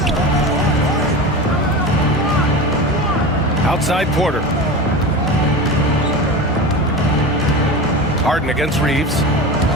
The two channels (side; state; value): both; normal; correlation 0.28